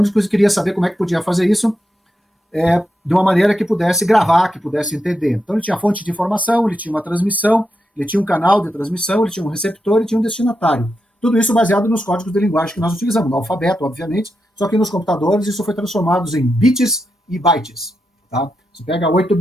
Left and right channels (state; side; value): normal; both; correlation 0.86